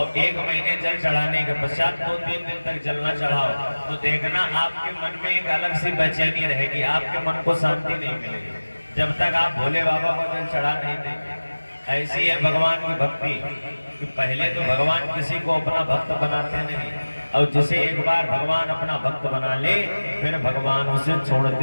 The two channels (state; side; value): inverted; both; correlation -1.00